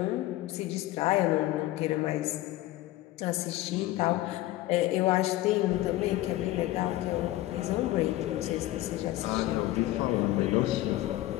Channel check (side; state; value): right; quieter; 16.2 dB